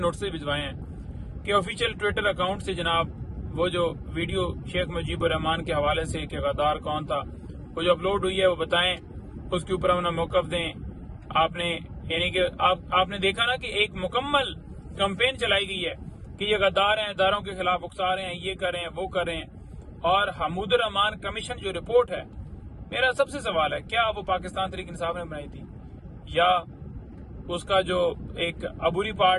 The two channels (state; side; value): identical; both; correlation 1.00